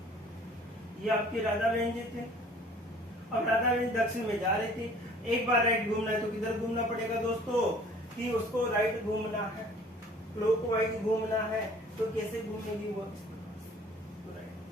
ये आपकी राधा बहन जी थे। अब राधा बहन दक्षिण में जा रही थी, एक बार राइट घूमना है तो किधर घूमना पड़ेगा दोस्तों, कि उसको राइट घूमना है, क्लॉकवाइज घूमना है, तो कैसे घूमेगी वो,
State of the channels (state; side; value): normal; both; correlation 0.52